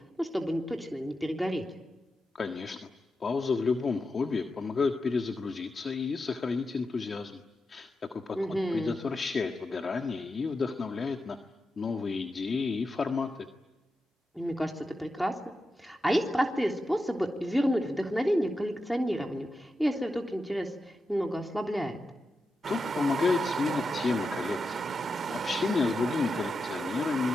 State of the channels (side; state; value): both; normal; correlation 0.89